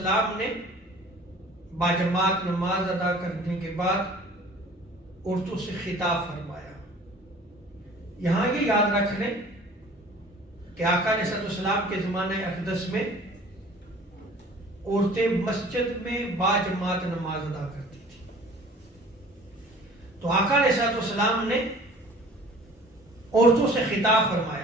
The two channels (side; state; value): both; normal; correlation 0.48